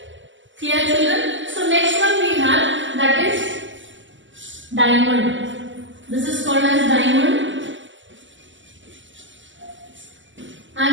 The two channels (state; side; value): late; left; 0.55 ms